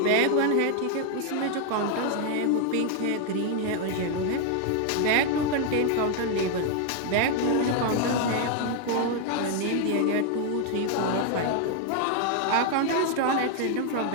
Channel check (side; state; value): both; different; correlation 0.00